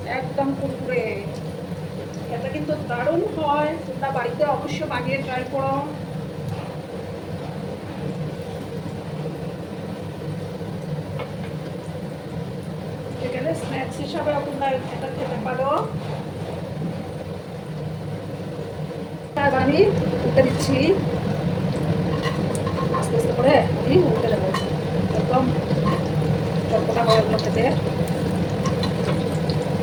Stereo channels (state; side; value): identical; both; correlation 1.00